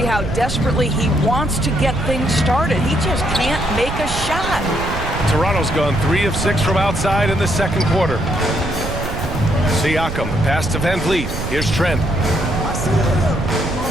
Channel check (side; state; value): right; noise; rumble, 6 dB below the sound